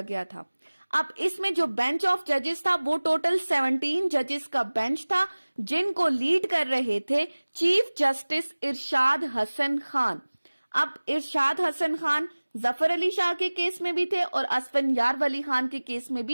गया था। अब इसमें जो बेंच ऑफ जजेस था वो टोटल 17 जजेस का बेंच था, जिनको लीड कर रहे थे चीफ जस्टिस इरशाद हसन खान। अब इरशाद हसन खान जफर अली शाह के केस में भी थे और असफनयार वली खान के केस में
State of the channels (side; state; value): both; inverted; correlation -1.00